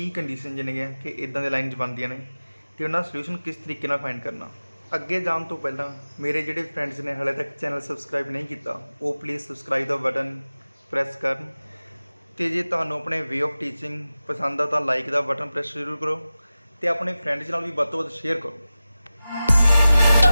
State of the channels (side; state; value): both; inverted; correlation -0.95